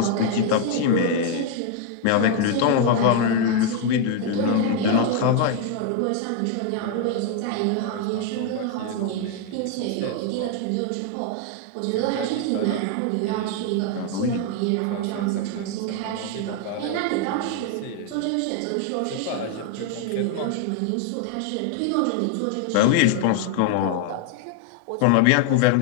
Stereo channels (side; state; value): both; different; correlation 0.00